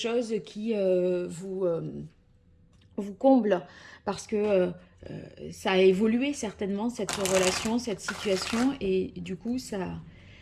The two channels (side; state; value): both; identical; correlation 1.00